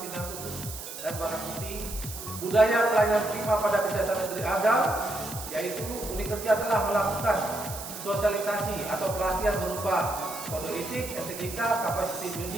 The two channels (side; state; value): right; noise; hiss, 10 dB below the sound